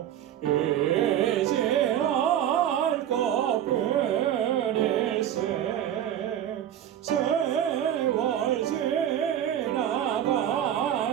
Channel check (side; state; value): left; quieter; 10.6 dB